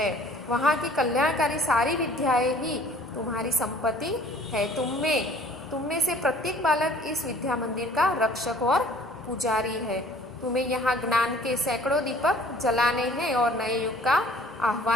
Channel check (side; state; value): both; normal; correlation 0.53